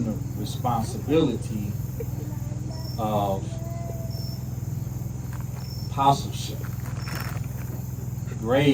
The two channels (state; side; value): identical; both; correlation 1.00